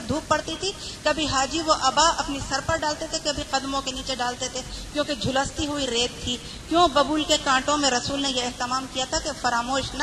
دھوپ پڑتی تھی, کبھی حاجی وہ ابا اپنی سر پر ڈالتے تھے, کبھی قدموں کے نیچے ڈالتے تھے, کیونکہ جھلستی ہوئی ریت تھی. کیوں؟ ببول کے کانٹوں میں رسول نے یہ اہتمام کیا تھا کہ فراموش نہ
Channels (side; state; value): both; identical; correlation 1.00